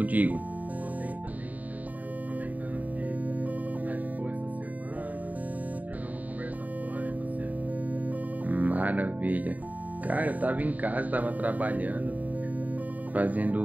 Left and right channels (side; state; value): left; late; 0.075 ms